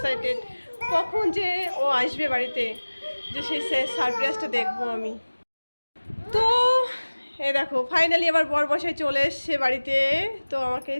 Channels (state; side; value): inverted; both; correlation -1.00